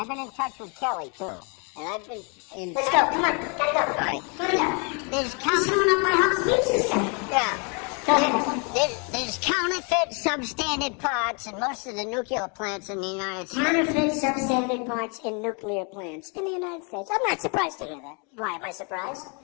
been in touch with Kelly, too. And I've been in... Let's go, come on, gotta go. All right. Gotta go. There's coming up my house. Yeah. There's counterfeit substandard parts in most of the nuclear plants in the United States. Counterfeit substandard parts in nuclear plants in the United States. I'm not surprised to hear that. Why am I surprised?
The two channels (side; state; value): right; quieter; 35.2 dB